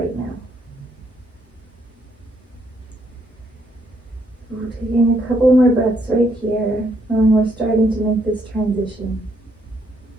now. We're taking a couple more breaths right here, and we're starting to make this transition.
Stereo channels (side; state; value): both; normal; correlation 0.72